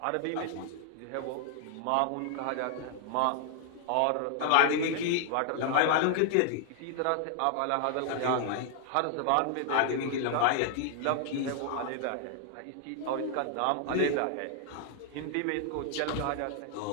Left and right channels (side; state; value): both; different; correlation 0.00